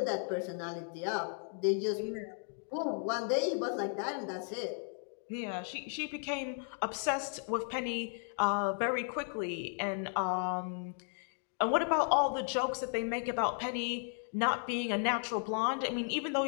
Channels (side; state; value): right; silent; 54 dB below the other